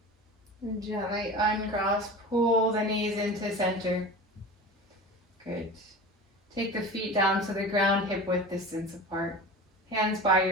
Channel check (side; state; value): both; normal; correlation 0.33